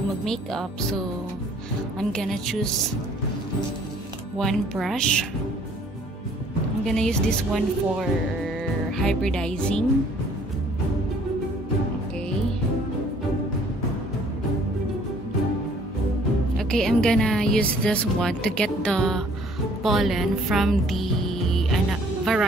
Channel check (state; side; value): normal; both; correlation 0.58